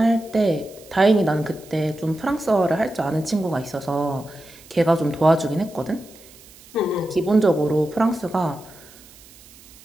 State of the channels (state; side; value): noise; right; hiss, 23 dB below the sound